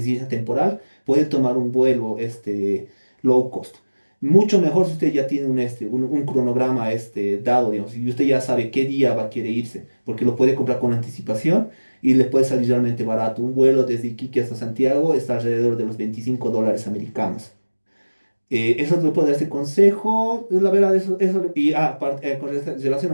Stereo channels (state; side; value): inverted; both; correlation -1.00